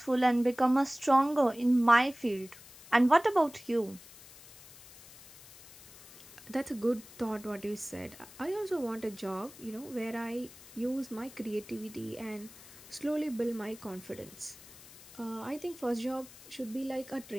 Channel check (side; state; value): left; noise; hiss, 20 dB below the sound